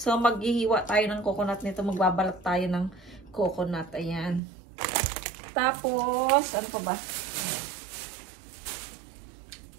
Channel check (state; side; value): drops out; left; at 4.4 s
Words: maghihiwa tayo ng coconut nito. Magbabalat tayo ng coconut, ayan. Tapos, ano pa ba?